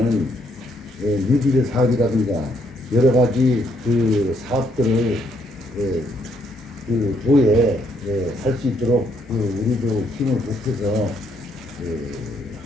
뉴딜 사업이라든가 여러 가지 그 사업들을 그 도에 할 수 있도록 우리도 힘을 보태서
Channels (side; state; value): both; normal; correlation 0.72